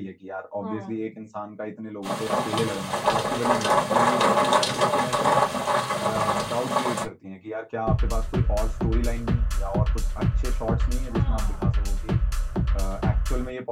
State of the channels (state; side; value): identical; both; correlation 1.00